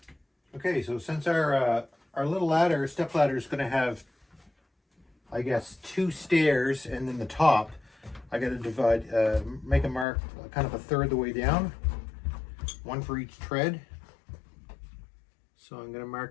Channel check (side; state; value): right; drops out; at 10.1 s